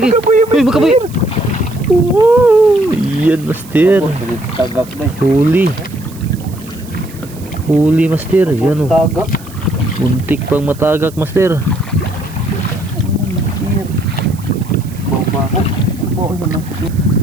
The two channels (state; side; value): noise; right; hiss, 21 dB below the sound